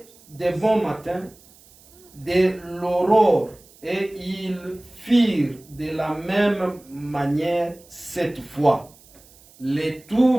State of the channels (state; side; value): noise; right; hiss, 26 dB below the sound